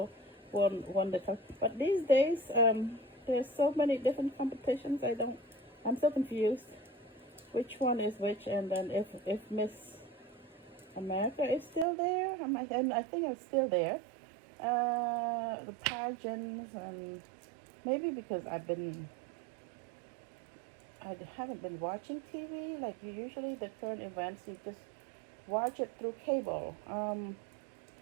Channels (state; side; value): drops out; left; at 11.9 s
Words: won the. But these days, there's so many different competitions. I'm so confused. Which one is which? And then if Miss America is still there, and I think it's still there. The pageants, and maybe because I haven't been watching TV like you usually. The current events, you just watch it through cable.